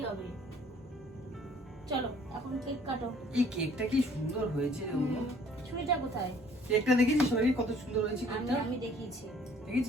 হবে। চলো এখন কেক কাটো। এই কেকটা কি সুন্দর হয়েছে রে অনু। ছুরিটা কোথায়? কেকটা দেখেছিস সবাই কত সুন্দর হয়েছে কেকটা? আমি দেখিয়েছি।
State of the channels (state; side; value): normal; both; correlation 0.57